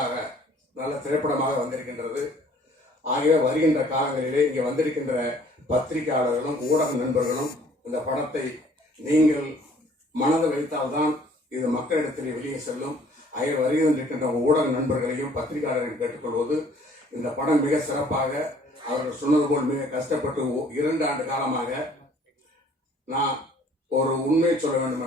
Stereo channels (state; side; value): normal; both; correlation 0.57